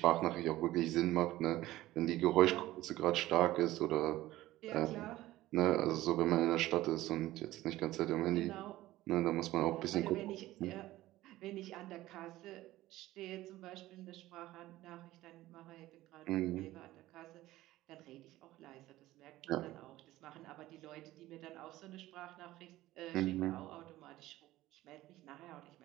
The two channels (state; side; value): quieter; left; 16.3 dB